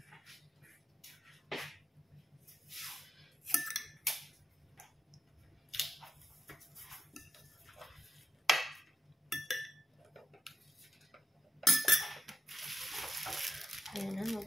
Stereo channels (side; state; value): both; normal; correlation 0.85